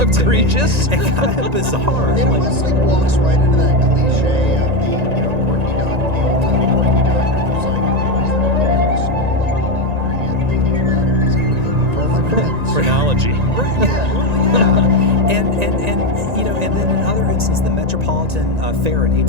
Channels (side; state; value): left; late; 1.9 ms